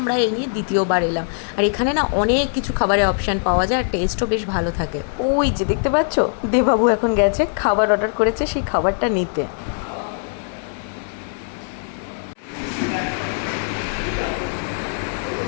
এই নিয়ে দ্বিতীয়বার এলাম। আর এখানে না অনেক কিছু খাবারের অপশান পাওয়া যায় আর টেস্টও বেশ ভালো থাকে। ওই যে দেখতে পাচ্ছ, দেবাবু এখন গেছে খাবার অর্ডার করেছে সেই খাবারটা নিতে।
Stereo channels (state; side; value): silent; right; digital silence